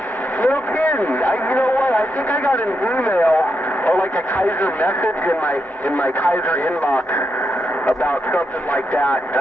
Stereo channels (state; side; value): normal; both; correlation 0.83